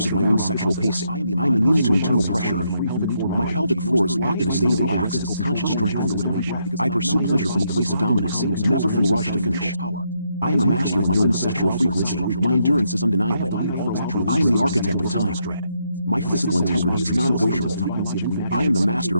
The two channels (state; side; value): inverted; both; correlation -0.77